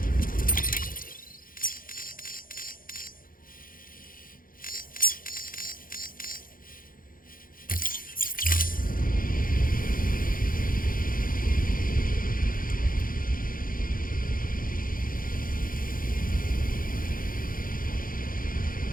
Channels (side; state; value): right; late; 0.41 ms